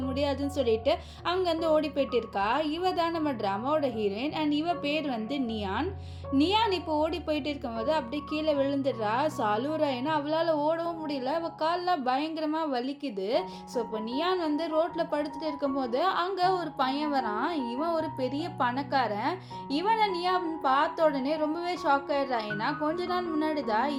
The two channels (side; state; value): both; identical; correlation 1.00